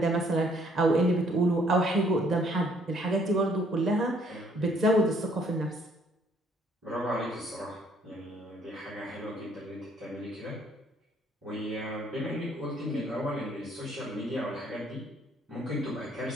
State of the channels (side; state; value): both; normal; correlation 0.64